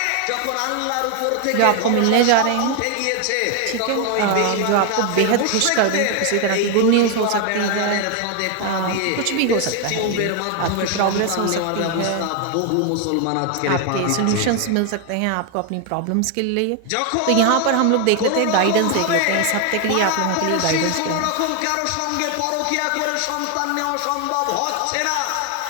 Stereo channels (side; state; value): both; different; correlation 0.01